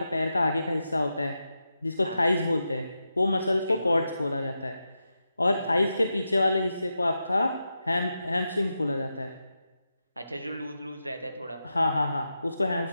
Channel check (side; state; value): both; inverted; correlation -0.88